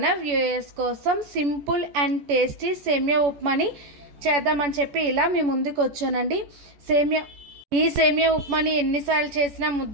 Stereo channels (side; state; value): left; late; 14 ms